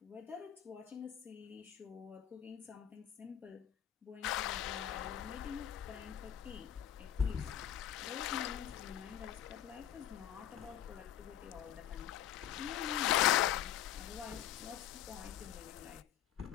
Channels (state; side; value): quieter; right; 10.8 dB